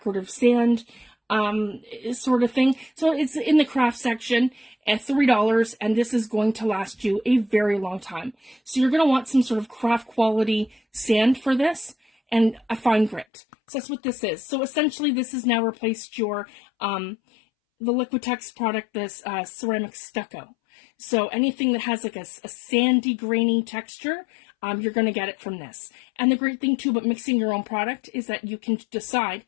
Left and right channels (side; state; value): right; drops out; at 13.2 s